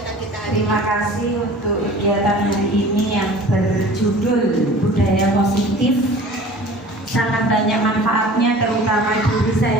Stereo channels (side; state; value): both; normal; correlation 0.44